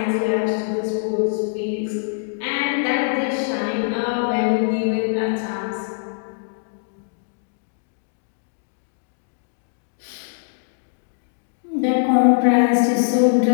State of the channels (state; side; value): silent; right; digital silence